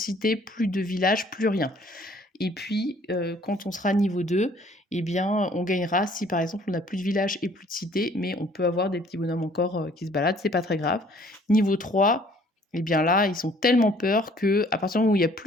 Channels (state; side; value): normal; both; correlation 0.58